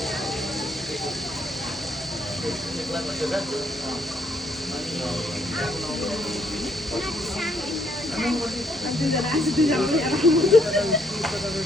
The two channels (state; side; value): normal; both; correlation 0.70